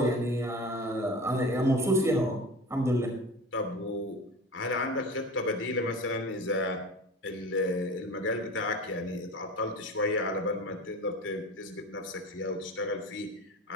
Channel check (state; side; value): normal; both; correlation 0.34